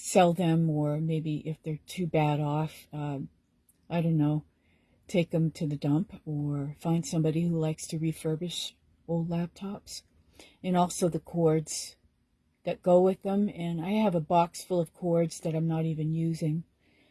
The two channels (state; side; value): identical; both; correlation 1.00